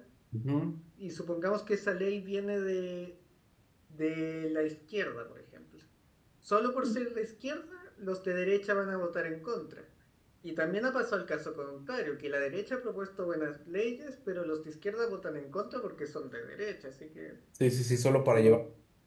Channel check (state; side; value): identical; both; correlation 1.00